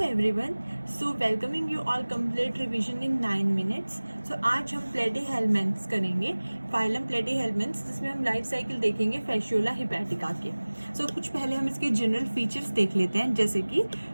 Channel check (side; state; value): both; inverted; correlation -1.00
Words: everyone, so welcoming you all complete revision in 9 minutes. So आज हम platyhelminthes करेंगे, phylum platyhelminthes, जिसमें हम लाइफ साइकिल देखेंगे फैसियोला हिपैटिका के। सो कुछ पहले हम इसके जनरल फीचर्स देख लेते हैं, जैसे कि